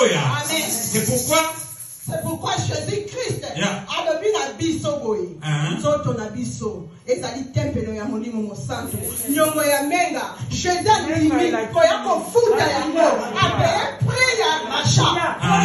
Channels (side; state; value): both; identical; correlation 1.00